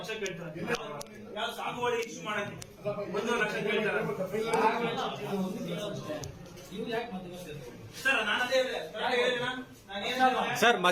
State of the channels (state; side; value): identical; both; correlation 1.00